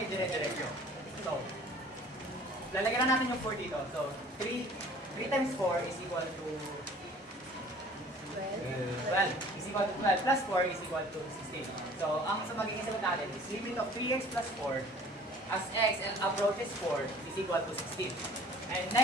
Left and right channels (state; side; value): normal; both; correlation 0.50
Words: i-dire-diretso. So, lalagyan na natin yung 4 dito. So, 3 times 4 is equal to 12 is equal to 12 plus 4 is equal to 16. So, ang sa magiging sagot natin is limit of 3x plus 4 as x and approaches 4 is equal to 16. And